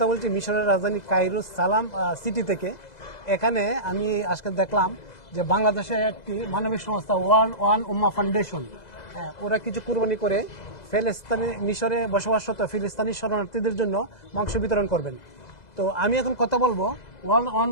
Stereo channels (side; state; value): right; late; 2.0 ms